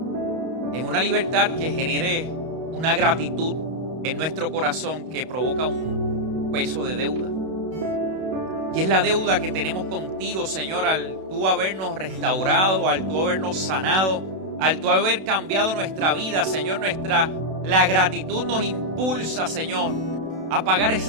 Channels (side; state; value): left; late; 32 ms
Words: En una libertad que genere una gratitud en nuestro corazón que provoca un peso de deuda. Y es la deuda que tenemos contigo, Señor, al tú habernos restaurado, al tú habernos sanado, al tú haber cambiado nuestra vida, Señor. La gratitud nos impulsa, Señor, a pagar